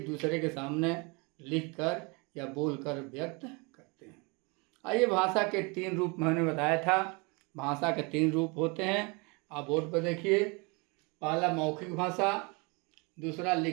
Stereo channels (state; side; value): quieter; left; 29.9 dB